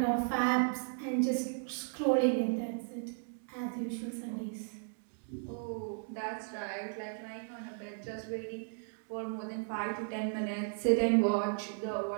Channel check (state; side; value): silent; left; 54 dB below the other